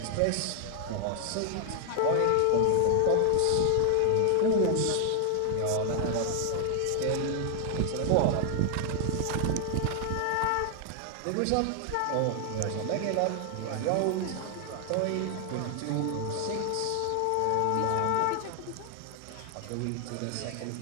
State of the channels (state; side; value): different; both; correlation 0.00